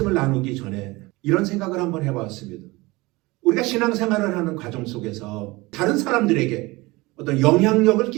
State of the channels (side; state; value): left; quieter; 22.2 dB